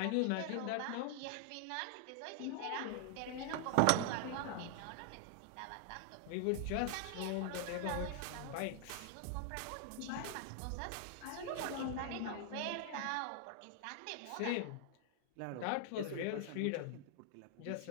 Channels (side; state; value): both; different; correlation 0.00